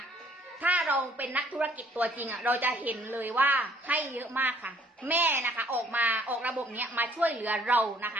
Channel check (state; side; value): normal; both; correlation 0.60